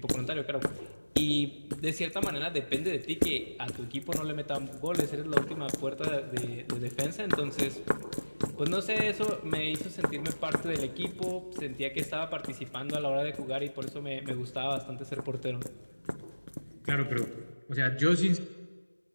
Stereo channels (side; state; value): both; inverted; correlation -1.00